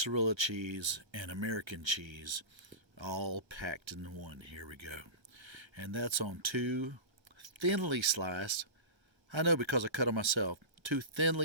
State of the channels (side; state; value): left; late; 1.2 ms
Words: cheese, and American cheese, all packed in one. Here we go. And that's on two thinly sliced, I know because I cut them myself, two